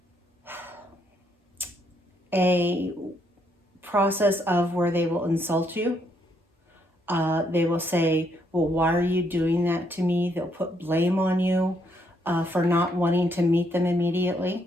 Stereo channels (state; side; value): normal; both; correlation 0.73